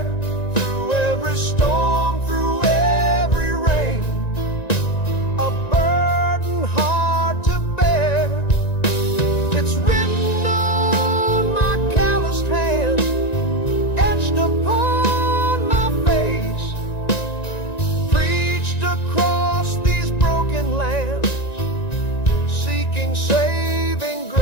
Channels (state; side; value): late; right; 1.9 ms